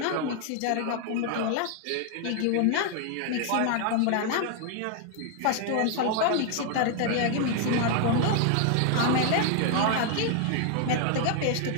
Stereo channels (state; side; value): different; both; correlation 0.00